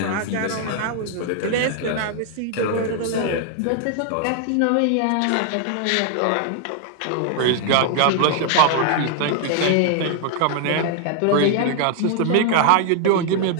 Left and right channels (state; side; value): different; both; correlation 0.00